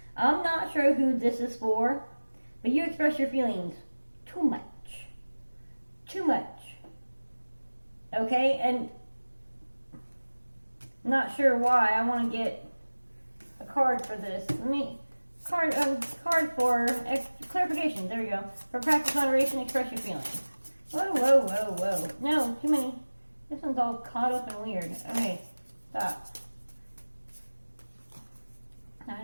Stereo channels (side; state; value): both; inverted; correlation -1.00